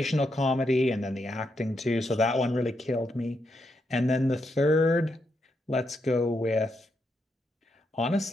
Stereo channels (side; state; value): both; normal; correlation 0.81